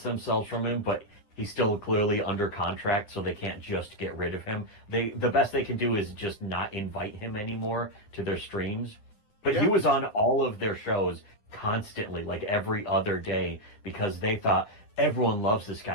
themselves from him. But he's still clearly under contract, so they can't just get rid of him. The best they can do is just not invite him anymore to their streams. But he Yeah. was on all of their shows constantly, like every other day, because they thought everyone loves this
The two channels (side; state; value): right; late; 9.8 ms